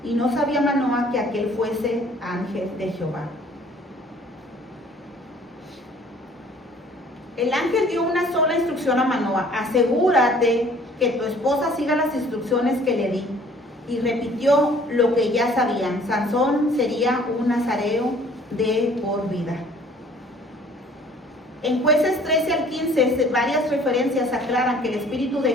Y no sabía Manoa que aquel fuese ángel de Jehová. El ángel dio una sola instrucción a Manoa: asegúrate que tu esposa siga las instrucciones que le di. Y repitió lo que ya sabían: Sansón sería un nazareo de por vida. En Jueces 13 al 15, varias referencias aclaran que el Espíritu de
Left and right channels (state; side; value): normal; both; correlation 0.54